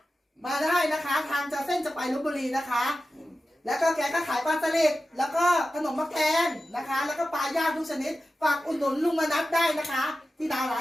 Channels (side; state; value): both; normal; correlation 0.93